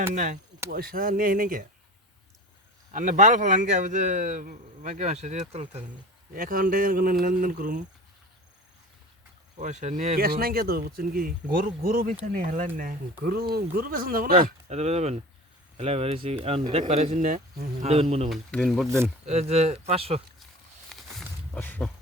নাই পয়সা নেই নাকি আপনি বাল ফেলান কে যে বাকি মাসে দিয়ে তুলতে অ্যাকাউন্টে কোনো লেনদেন করুম পয়সা নিয়ে ক্যাশ নাই কে তো বুঝছেন কি গরু গরু বেচা নিয়ে হেলান না গরু গরু বেচন যাব না এত যাবেন খেলা বেরিয়েছি এখন দেখ পারেছেন না দেবেন মনে মনে Din Barden. এই যে 500 500.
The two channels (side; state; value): both; normal; correlation 0.36